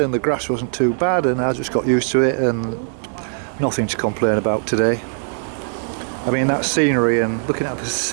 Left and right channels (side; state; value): left; silent; 66 dB below the other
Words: the grass wasn't too bad, and I just got used to it, and nothing to complain about today. I mean, that scenery and looking at the